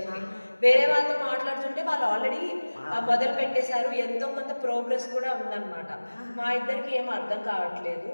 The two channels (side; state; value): both; inverted; correlation -1.00